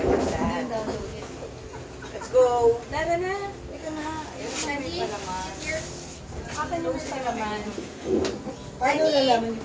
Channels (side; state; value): both; identical; correlation 1.00